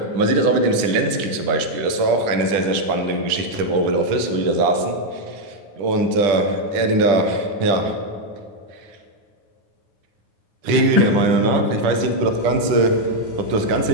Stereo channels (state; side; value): late; left; 10 ms